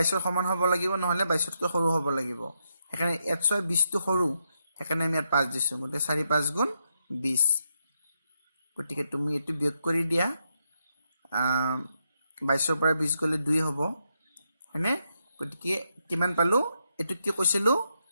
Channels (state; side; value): inverted; both; correlation -0.81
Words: ৰ সমান হ'ব লাগিব নহলে 22 তকৈ সৰু হ'ব লাগিব হেকানে 1 6 20 টো সৰু হেকানে আমি 5 দিছো গতে 4 5 গুণ 20 গতিকে তুমি এটো বিয়োগ কৰি দিয়া 22 ৰ পৰা 20 গলে 2 হ'ব হয়নে গতিকে কিমান পালো এটো কি কৈছিলো